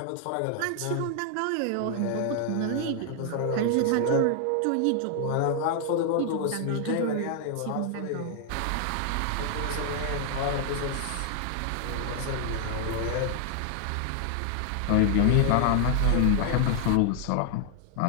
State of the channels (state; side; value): different; both; correlation 0.00